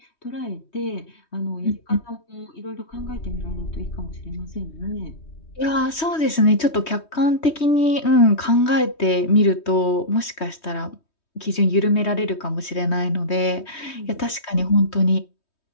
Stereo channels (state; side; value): late; right; 3.2 ms